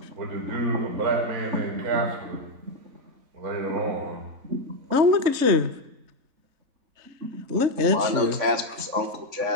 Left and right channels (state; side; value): late; left; 3.3 ms